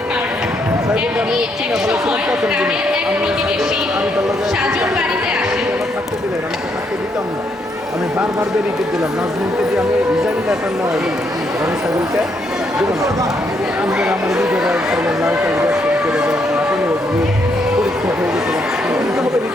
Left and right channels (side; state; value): both; normal; correlation 0.75